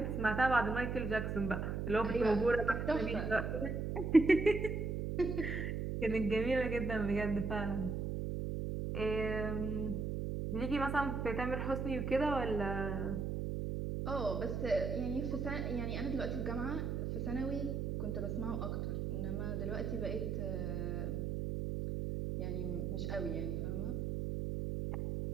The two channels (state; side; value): noise; right; hum, 2 dB below the sound